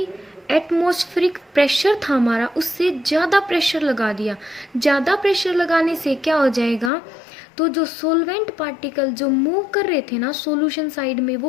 एटमॉस्फेरिक प्रेशर था हमारा उससे ज़्यादा प्रेशर लगा दिया। ज़्यादा प्रेशर लगाने से क्या हो जाएगा, तो जो सोलवेंट पार्टिकल जो मूव कर रहे थे ना सॉल्यूशन साइड में,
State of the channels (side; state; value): right; drops out; at 6.9 s